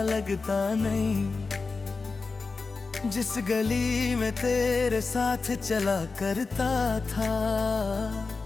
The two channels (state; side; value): quieter; right; 4.2 dB